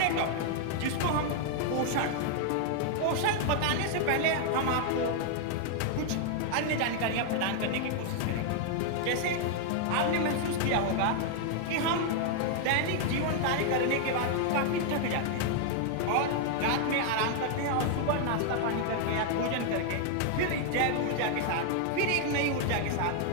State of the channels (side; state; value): both; different; correlation 0.00